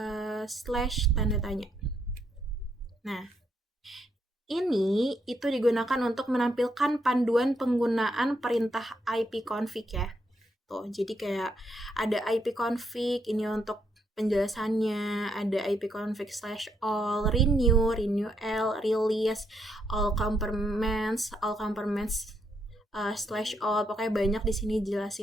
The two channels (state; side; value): normal; both; correlation 0.77